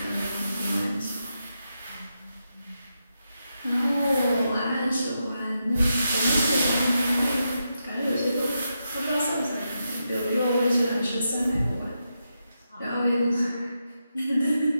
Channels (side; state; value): both; inverted; correlation -0.86